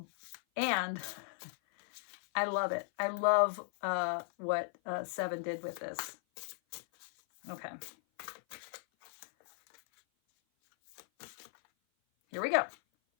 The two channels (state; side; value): silent; right; 53 dB below the other